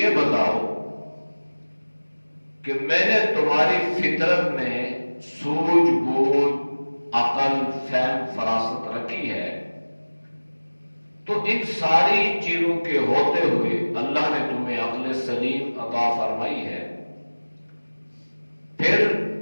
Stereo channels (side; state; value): both; inverted; correlation -1.00